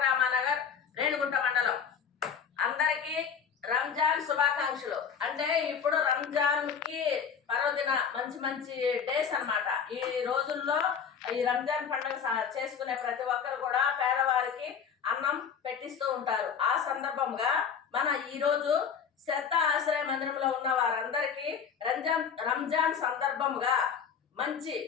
రామానగర్ రేణుగుంట మండలం. అందరికీ రంజాన్ శుభాకాంక్షలు. అంటే ఇప్పుడు రంజాన్ కి పర్వదిన మంచి మంచి డేస్ అన్నమాట. ఈ రోజుల్లో ఈ రంజాన్ పండుగ చేసుకునే ప్రతి ఒక్కరు కూడా పేదవారికి అన్నం పెట్టిస్తూ ఉంటారు. ఆ సందర్భంగా మన ఈ రోజు శ్రద్ధ ఆశ్రయ మందిరంలో ఉన్న వారందరికీ రంజాన్ సందర్భంగా మంచి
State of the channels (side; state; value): right; quieter; 7.1 dB